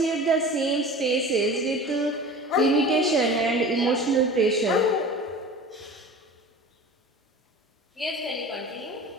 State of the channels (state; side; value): normal; both; correlation 0.38